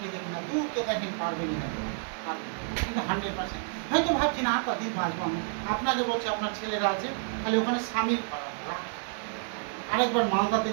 দেখি না, দূরকে দেখেন, পারবেনই না, কিন্তু 100%। হয়তো ভাবছি না আর কদিন বাঁচবো আমি, আপনাকে বলছি আপনার ছেলেরা আছে, খালি ওখানে স্বামীর আরেকবার মালদাতে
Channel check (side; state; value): left; silent; 58 dB below the other